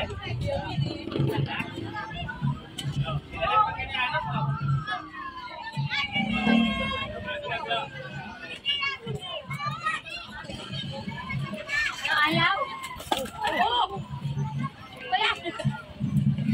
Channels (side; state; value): both; identical; correlation 1.00